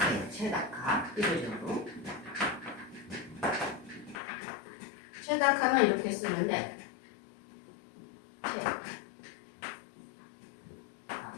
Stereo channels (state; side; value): drops out; right; at 4.2 s